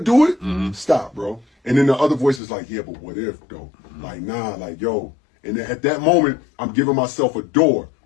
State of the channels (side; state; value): right; drops out; at 2.4 s